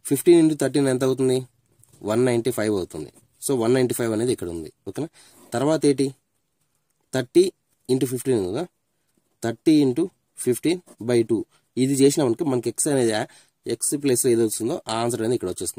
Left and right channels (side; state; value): both; identical; correlation 1.00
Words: 15 into 13 ఎంత అవుతుంది 195 అవుతుంది. సో 195 అనేది ఇక్కడ ఉంది. ఓకేనా, తర్వాత ఏంటి 30 into 15 కదా, 30 into 15 by 2. ఇది చేసినామనుకో మనకి ఎక్స్ అనేది ఎక్స్ ప్లేస్లో ఏది వస్తుందో ఆ ఆన్సర్ అనేది ఇక్కడ